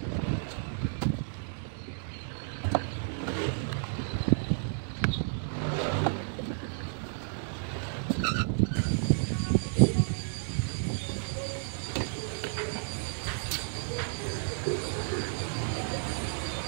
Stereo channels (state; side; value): silent; left; digital silence